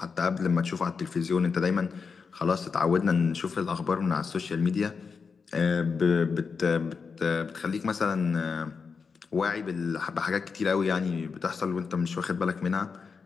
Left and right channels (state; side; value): quieter; right; 5.3 dB